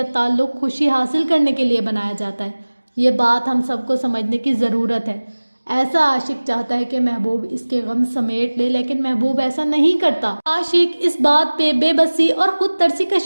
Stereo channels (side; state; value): both; inverted; correlation -1.00